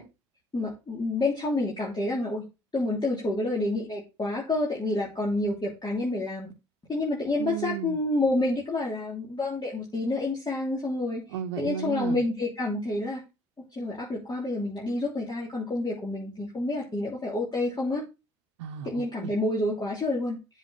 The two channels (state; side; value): normal; both; correlation 0.63